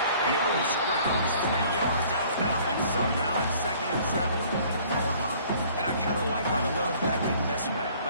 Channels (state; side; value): inverted; both; correlation -0.55